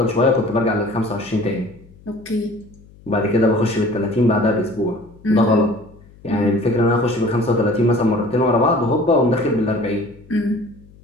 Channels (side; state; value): left; noise; hum, 24 dB below the sound